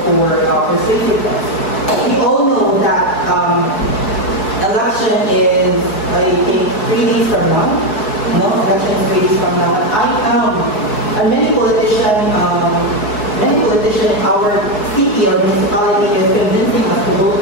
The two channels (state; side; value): late; right; 4.7 ms